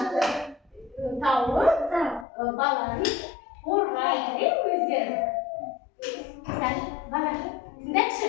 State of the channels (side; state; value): right; drops out; at 2.2 s